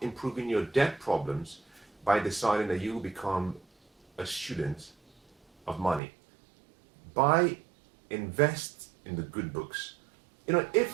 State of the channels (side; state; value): left; drops out; at 6.0 s